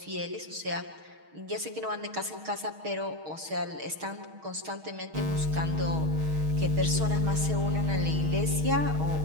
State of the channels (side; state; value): left; late; 6.4 ms